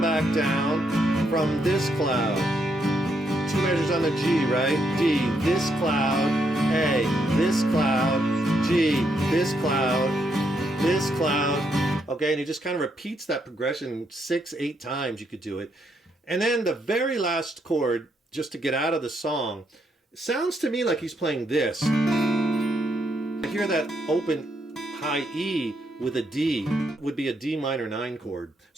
back down from this cloud. 2 measures on the G, right? D, this cloud, A, this cloud, G, this cloud, this cloud. Okay, and he just kind of repeats that progression 6, 8 times. You could do it. And then the very last chord, just to get out of the song, sounds to me like he's playing this. I hear that open high E with a D would be a D minor 9 chord.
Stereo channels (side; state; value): both; normal; correlation 0.77